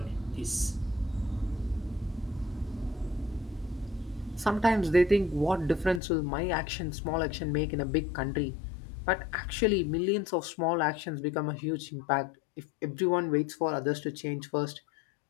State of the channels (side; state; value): right; drops out; at 6.0 s